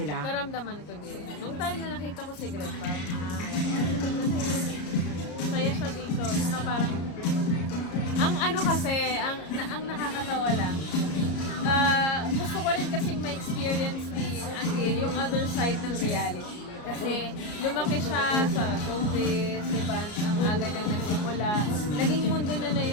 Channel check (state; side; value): late; right; 34 ms